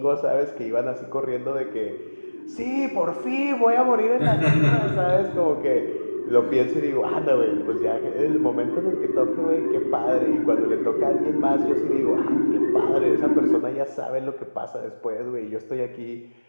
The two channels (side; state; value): both; inverted; correlation -1.00